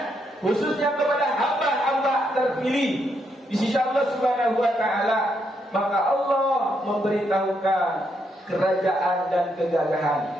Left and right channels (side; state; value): both; normal; correlation 0.78